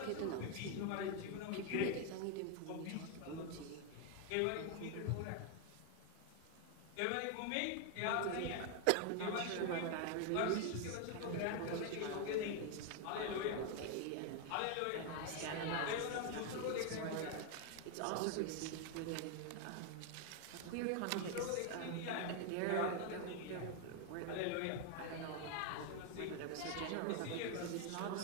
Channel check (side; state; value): both; different; correlation 0.01